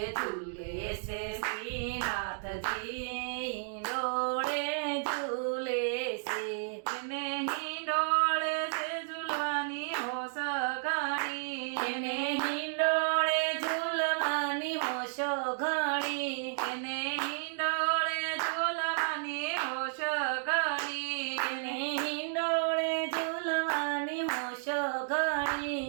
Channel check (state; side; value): silent; left; digital silence